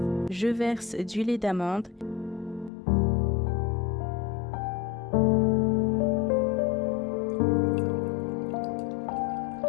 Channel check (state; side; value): drops out; right; at 2.7 s